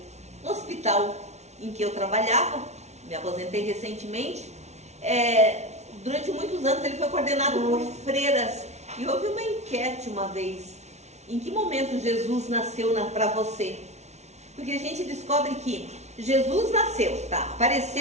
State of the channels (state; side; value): late; left; 0.32 ms